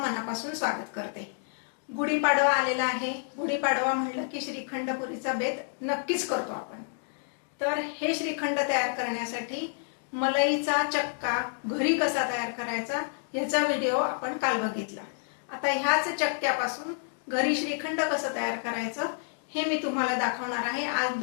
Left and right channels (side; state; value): right; silent; digital silence